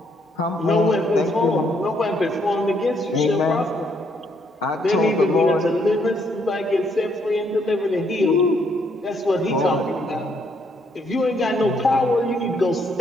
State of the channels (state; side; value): normal; both; correlation 0.71